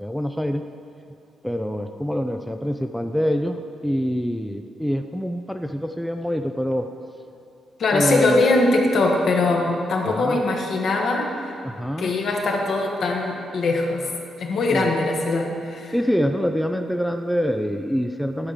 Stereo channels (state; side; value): normal; both; correlation 0.85